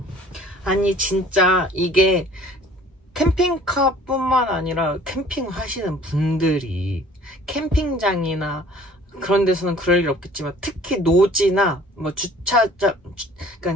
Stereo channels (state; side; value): normal; both; correlation 0.52